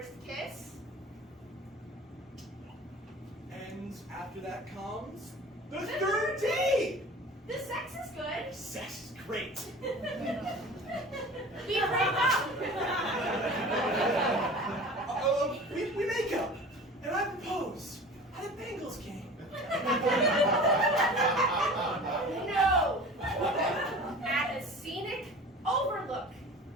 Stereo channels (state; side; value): normal; both; correlation 0.40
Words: kiss. And after that comes the third date. The sex is good. Sex is great. We break up. We make up, and I propose at a Bengals game. No. At a scenic overlook.